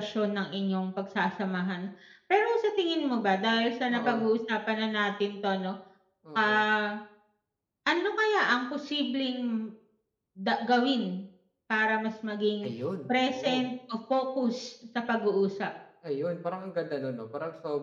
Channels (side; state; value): both; identical; correlation 1.00